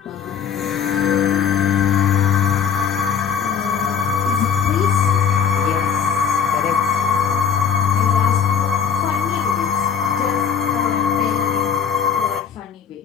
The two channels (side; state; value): right; quieter; 7.4 dB